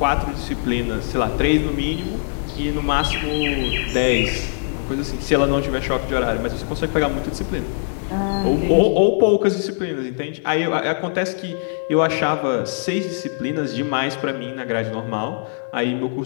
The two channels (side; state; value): right; silent; digital silence